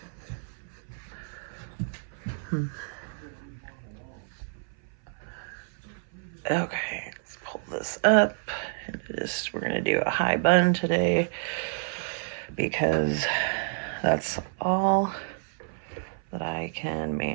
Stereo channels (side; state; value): left; silent; 56 dB below the other